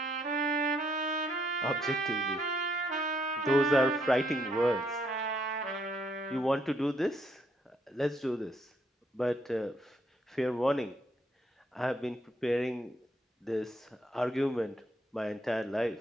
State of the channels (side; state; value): both; normal; correlation 0.72